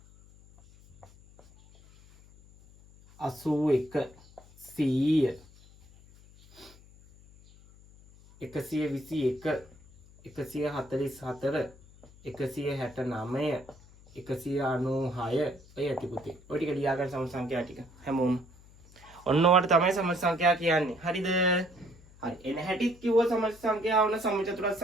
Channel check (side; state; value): left; noise; hum, 24 dB below the sound